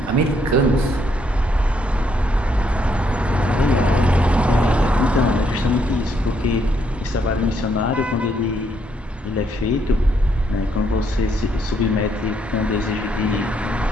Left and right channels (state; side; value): normal; both; correlation 0.73